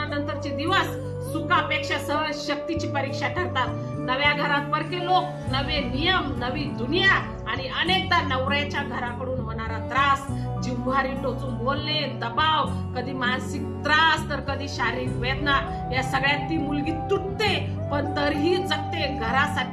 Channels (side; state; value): both; identical; correlation 1.00